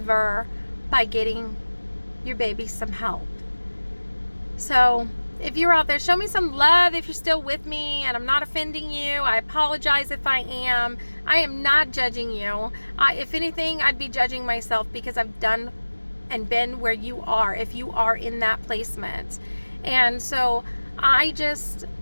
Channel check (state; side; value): inverted; both; correlation -1.00